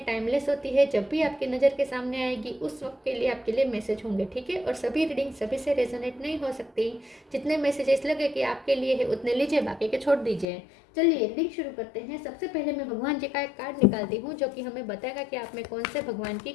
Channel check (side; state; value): right; drops out; at 10.5 s